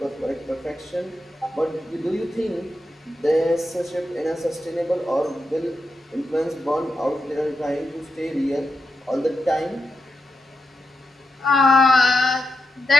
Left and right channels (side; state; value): both; normal; correlation 0.87